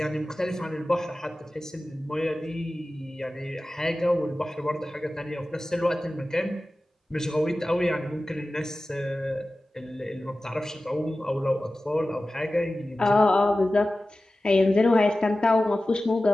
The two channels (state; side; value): normal; both; correlation 0.95